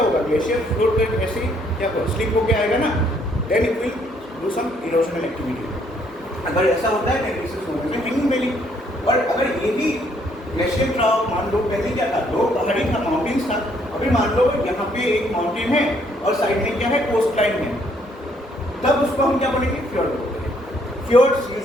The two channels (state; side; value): normal; both; correlation 0.67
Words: होगा? ग्लेशियर फ्लोट कर ऐसे क्या स्लिप होकर आएगा ना, then it will do some erosional activity. अगर ऐसा होता है this is known as hanging valley. और अगर ये भी ग्लेशियर ट्राउ मान लो, पहले क्या था? 2 पहाड़ी था, माउंटेन्स था. अभी मान लो यहाँ पे एक माउंटेन है और साइड में क्या है? कोस्ट लाइन है. तब उसको हम क्या बोलेंगे? फ्योर्ड बोलते हैं. फ्योर्ड्स